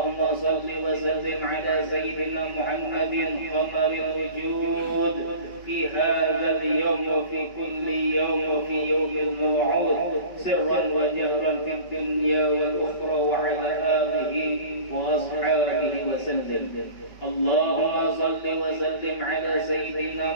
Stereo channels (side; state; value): right; late; 5.2 ms